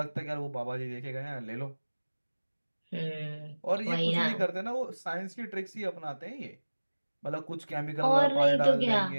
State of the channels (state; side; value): inverted; both; correlation -1.00